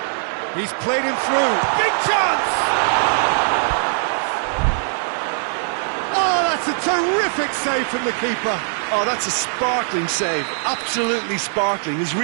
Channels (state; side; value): silent; left; digital silence